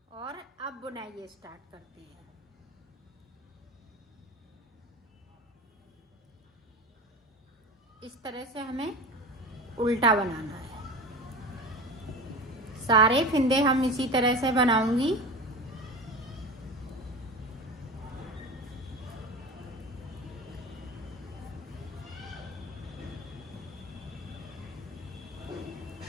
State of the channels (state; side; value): normal; both; correlation 0.31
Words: और अब बुनाई स्टार्ट करते हैं। इस तरह से हमें उल्टा बनाना है। सारे फिंदे हम इसी तरह से बनाऊंगी।